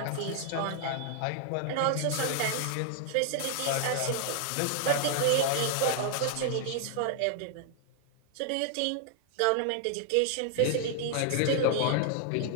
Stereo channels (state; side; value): different; both; correlation 0.00